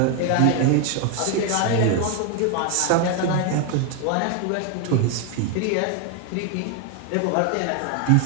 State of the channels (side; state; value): both; different; correlation 0.01